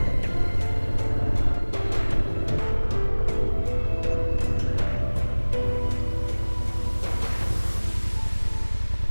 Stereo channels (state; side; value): inverted; both; correlation -1.00